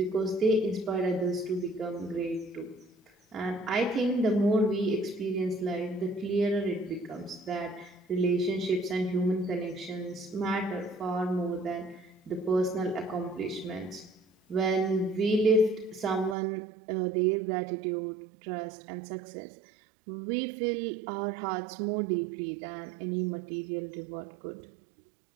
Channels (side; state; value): left; drops out; at 16.4 s